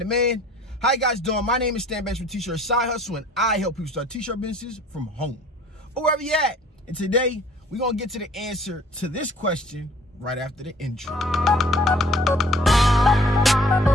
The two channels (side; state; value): both; normal; correlation 0.53